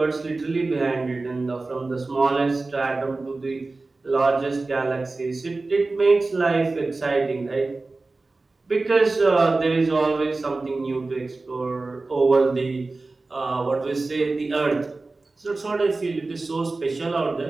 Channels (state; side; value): quieter; left; 3.5 dB